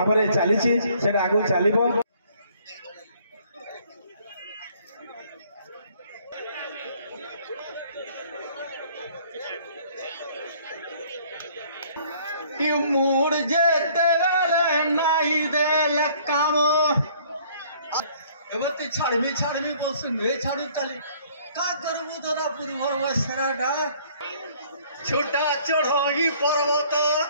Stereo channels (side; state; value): both; inverted; correlation -0.59